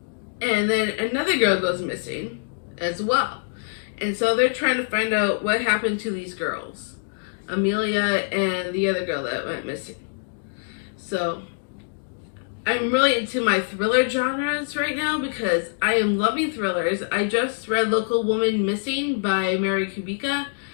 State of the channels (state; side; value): silent; right; digital silence